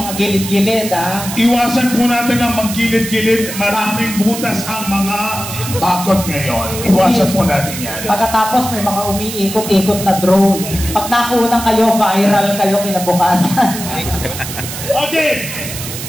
gilid-gilid, Iwasan po natin ang maggilid-gilid. Maraming butas ang mga bakod ngayon. Iwasan po natin yan. Pagkatapos may mga umiikot-ikot na drone. Pag nakunan kayo, viral kayo kinabukasan. Okay.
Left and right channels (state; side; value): noise; right; hiss, 8 dB below the sound